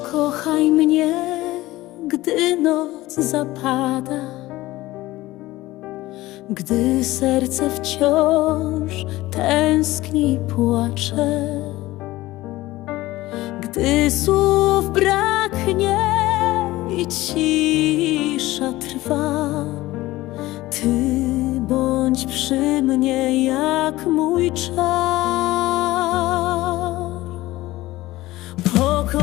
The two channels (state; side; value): quieter; right; 17.8 dB